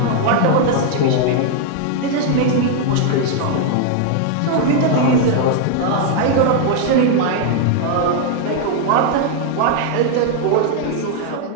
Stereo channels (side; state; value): both; different; correlation 0.00